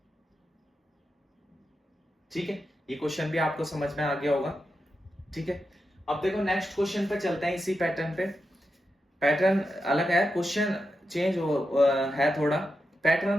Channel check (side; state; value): both; normal; correlation 0.88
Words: ठीक है। ये क्वेश्चन भी आपको समझ में आ गया होगा, ठीक है। अब देखो नेक्स्ट क्वेश्चन पे चलते हैं, इसी पैटर्न पे। पैटर्न अलग है, क्वेश्चन चेंज है थोड़ा,